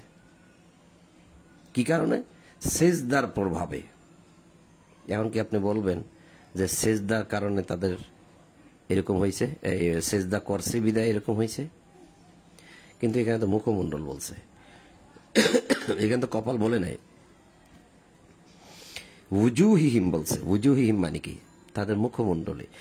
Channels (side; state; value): both; identical; correlation 1.00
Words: কি কারণে? সিজদার প্রভাবে। এমনকি আপনি বলবেন যে সিজদার কারণে তাদের এরকম হয়েছে, সিজদা করছে বিদায় এরকম হয়েছে, কিন্তু এখানে তো মুখমণ্ডল বলছে, এখানে তো কপাল বলে নাই। উজুহিহিম বলছে। উজুহিহিম মানে কি? তাদের মুখমণ্ডলে।